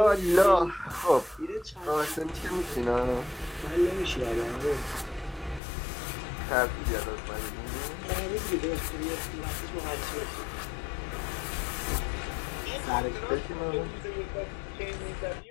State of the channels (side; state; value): right; drops out; at 5.6 s